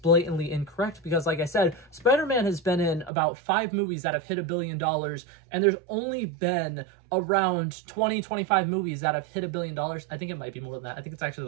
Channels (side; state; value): left; drops out; at 3.1 s